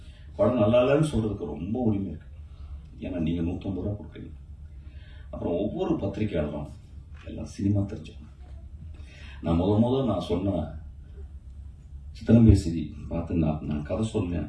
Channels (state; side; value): identical; both; correlation 1.00